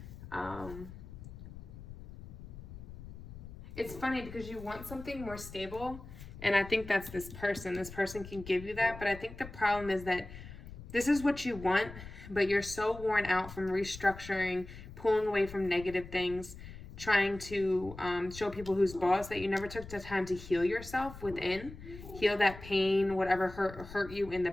It's funny because you want something more stable, and I think that's this person. This person can give you that, but I think the problem is that this is what you want, but you're so worn out from restructuring, pulling away from negative things, trying to show people who's boss, that you never took the time to heal yourself within, heal that pain, whatever hurt you in the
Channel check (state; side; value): noise; left; rumble, 14 dB below the sound